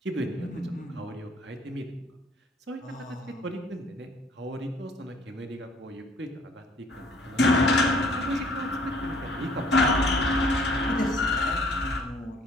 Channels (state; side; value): normal; both; correlation 0.58